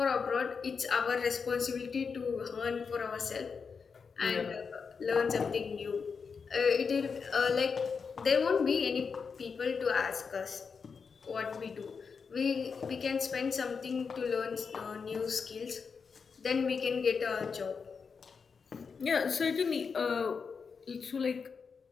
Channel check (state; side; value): quieter; right; 5.6 dB